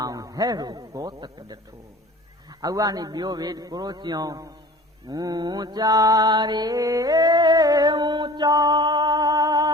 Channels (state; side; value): normal; both; correlation 0.44